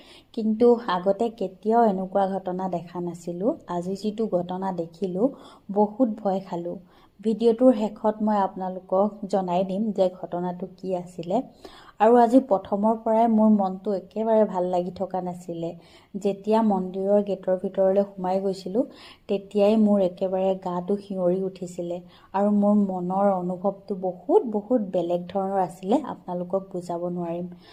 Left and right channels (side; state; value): both; identical; correlation 1.00